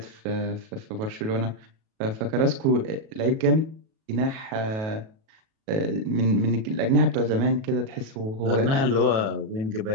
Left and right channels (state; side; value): late; left; 37 ms